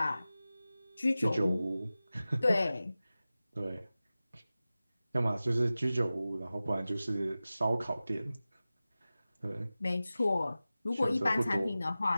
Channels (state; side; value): inverted; both; correlation -0.96